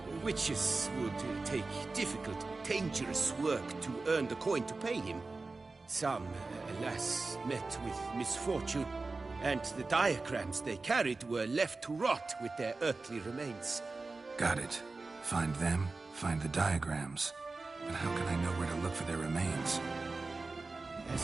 Witches would take difficult, dangerous work to earn the coin to pay him. Some, alas, met with misfortune, and the diagrams they carried were left to rot with their earthly remains. Got it. Find them, find the diagrams. But how can I know where to look for their remains?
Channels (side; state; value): left; quieter; 3.7 dB